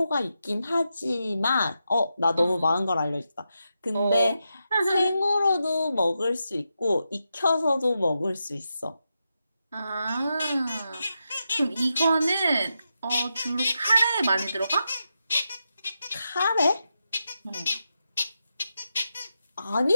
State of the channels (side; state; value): both; inverted; correlation -0.87